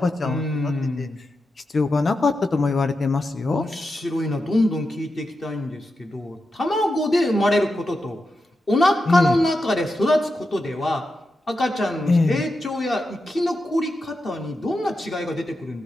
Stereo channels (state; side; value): normal; both; correlation 0.89